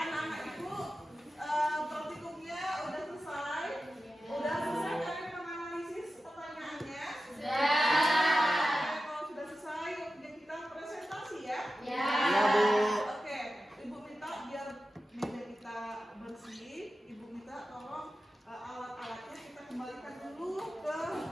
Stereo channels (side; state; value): both; normal; correlation 0.93